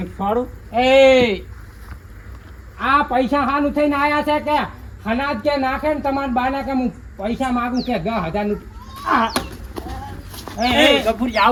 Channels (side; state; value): both; identical; correlation 1.00